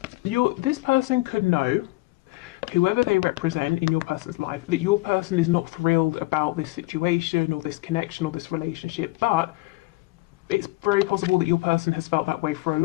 this person could know, whoever they represent in your person's life, that your person is not thrilled about this situation or this connection or this relationship, but it's very possible that your person has felt that way for a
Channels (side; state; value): right; quieter; 21.6 dB